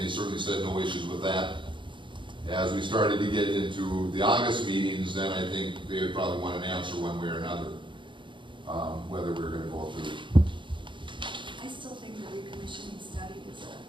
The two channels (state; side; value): late; left; 0.23 ms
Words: certainly said no issues with that. As we started to get into the August meetings, then I think they would probably want an answer one way or another, whether we're going to go through. I still think the recommissioning study is a